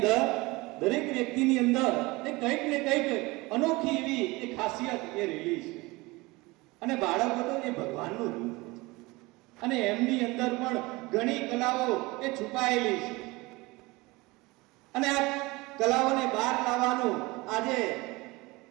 દરેક વ્યક્તિની અંદર કંઈક ને કંઈક અનોખી એવી એક ખાસિયત એ રહેલી છે. અને બાળકો તો એ ભગવાનનું રૂપ છે અને એમની અંદર પણ ઘણી કલાઓ એ છુપાયેલી છે. અને આ કલાઓને બહાર લાવવાનું આજે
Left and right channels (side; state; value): left; quieter; 22.8 dB